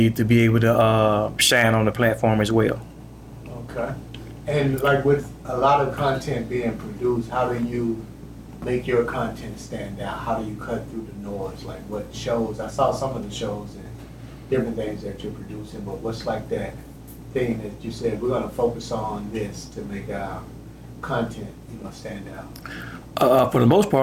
to be able to shine on the platform as well. Okay. And like with a lot of content being produced, how do you make your content stand out? How do you cut through the noise? Like what shows? I saw some of the shows and different things that you're producing, but what's like that thing that you said, we're gonna focus on this to make our content, stand out? For the most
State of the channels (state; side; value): identical; both; correlation 1.00